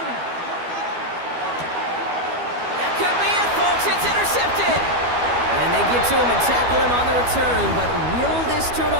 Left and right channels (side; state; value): left; late; 12 ms